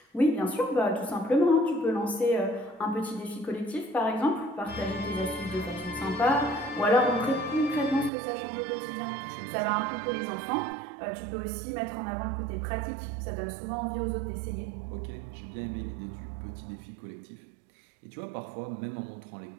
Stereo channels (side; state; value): left; drops out; at 8.1 s